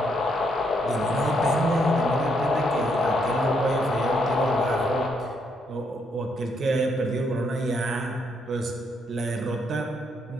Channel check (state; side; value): normal; both; correlation 0.75